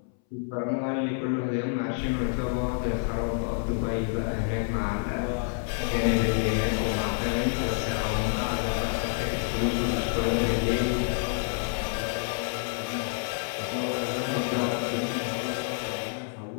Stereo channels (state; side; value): silent; right; 59 dB below the other